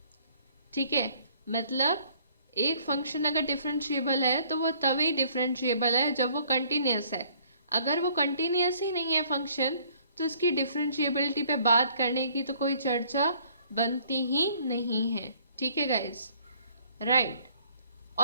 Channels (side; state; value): both; inverted; correlation -0.60